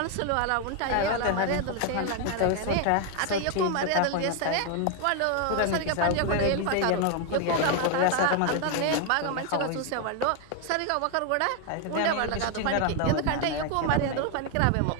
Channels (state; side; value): different; both; correlation 0.00